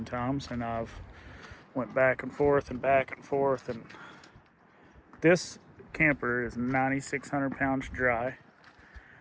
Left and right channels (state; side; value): identical; both; correlation 1.00